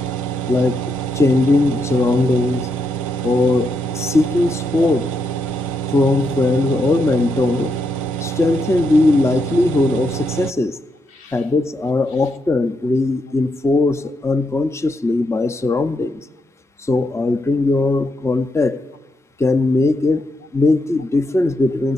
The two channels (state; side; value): normal; both; correlation 0.81